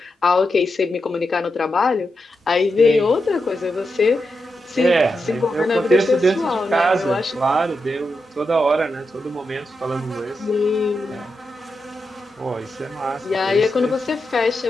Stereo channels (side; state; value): both; normal; correlation 0.87